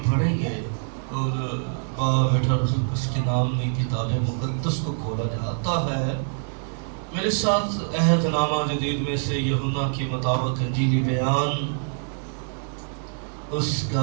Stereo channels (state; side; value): silent; left; 62 dB below the other